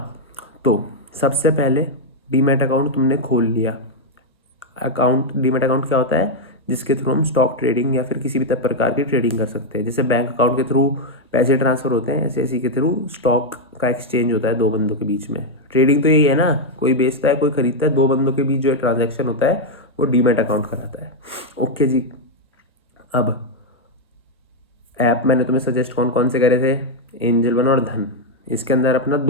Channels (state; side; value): normal; both; correlation 0.01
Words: तो सबसे पहले डीमैट अकाउंट तुमने खोल लिया। डीमैट अकाउंट क्या होता है, जिसके थ्रू हम स्टॉक ट्रेडिंग या फिर किसी भी प्रकार की ट्रेडिंग कर सकते हैं। जैसे बैंक अकाउंट के थ्रू पैसे ट्रांसफ़र होते हैं, ऐसे इसी के थ्रू स्टॉक का एक्सचेंज होता है दो बंदों के बीच में। ट्रेडिंग तो यही है ना, कोई बेचता है कोई खरीदता है, दो बंदों के बीच जो ट्रांजैक्शन होता है वो डीमैट अकाउंट कराता है। ओके जी, अब ऐप मैंने तुम्हें सजेस्ट कौन कौन से करे थे, एंजल वन और धन। इसके अंदर अपना